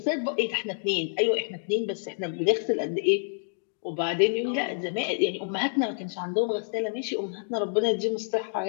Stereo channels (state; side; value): silent; right; digital silence